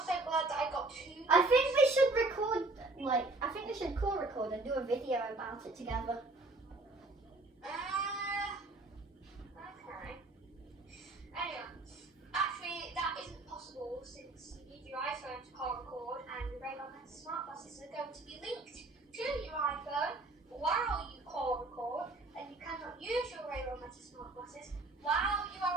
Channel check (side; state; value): left; quieter; 3.1 dB